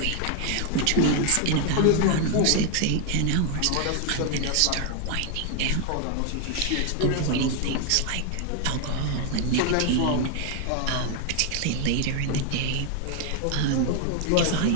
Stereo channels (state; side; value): different; both; correlation 0.00